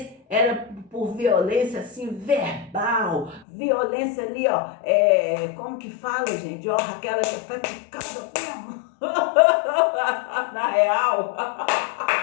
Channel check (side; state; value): right; drops out; at 3.5 s